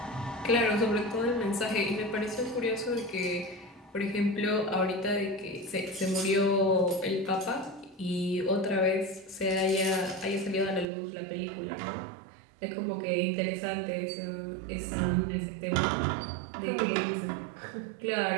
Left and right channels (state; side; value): drops out; left; at 10.9 s